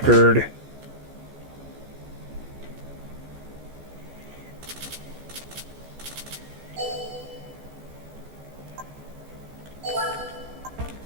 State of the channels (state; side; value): late; left; 14 ms